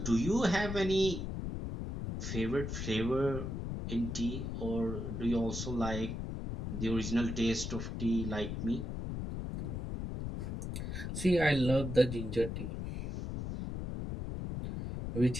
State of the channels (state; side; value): noise; left; rumble, 4 dB below the sound